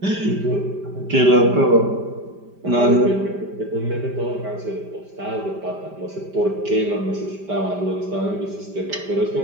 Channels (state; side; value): late; left; 5.0 ms